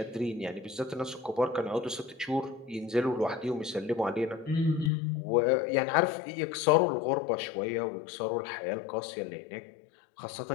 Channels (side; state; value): right; drops out; at 4.9 s